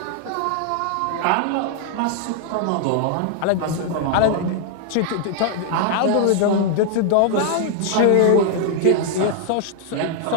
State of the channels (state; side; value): different; both; correlation 0.00